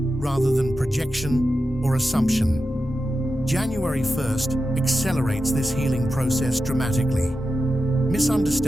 than projection or assumption. January 1st accelerates this healing process dramatically.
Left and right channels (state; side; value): normal; both; correlation 0.91